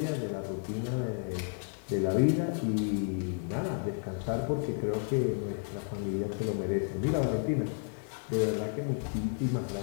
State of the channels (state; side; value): silent; right; 56 dB below the other